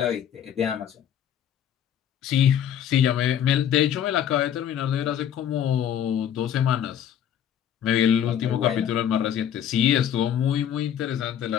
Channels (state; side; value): quieter; right; 9.6 dB